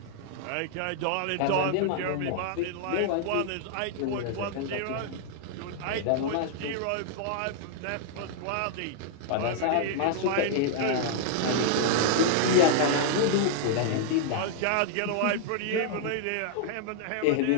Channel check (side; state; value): both; different; correlation -0.01